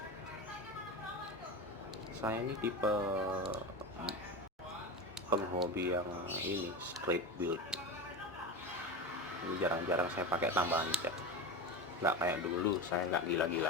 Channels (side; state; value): both; normal; correlation 0.23